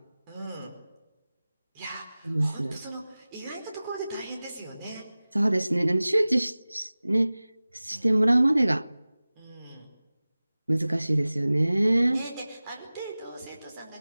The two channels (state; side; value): inverted; both; correlation -0.98